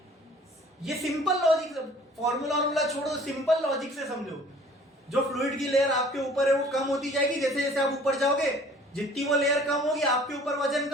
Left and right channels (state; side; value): normal; both; correlation 0.52